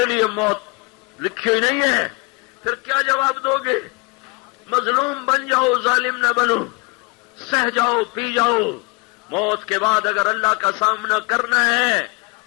لیے موت لکھی ہوئی نہیں ہے؟ پھر کیا جواب دو گے؟ مظلوم بن جاؤ، ظالم نہ بنو، سہ جاؤ، پی جاؤ۔ موت کے بعد اگر اللہ کا سامنا کرنا ہے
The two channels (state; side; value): quieter; right; 27.9 dB